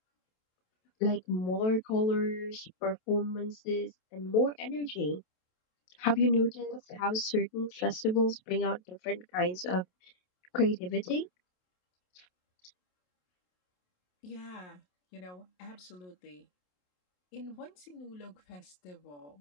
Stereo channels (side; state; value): right; late; 27 ms